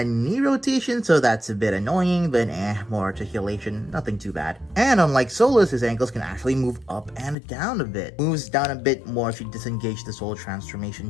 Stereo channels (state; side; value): drops out; right; at 7.4 s